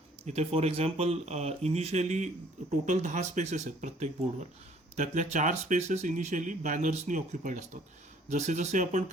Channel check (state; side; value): normal; both; correlation 0.58